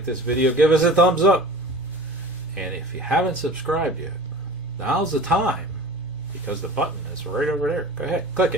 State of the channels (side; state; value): both; normal; correlation 0.39